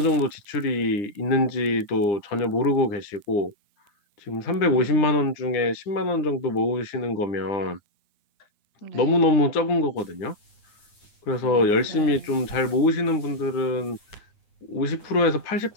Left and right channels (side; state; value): right; late; 9.5 ms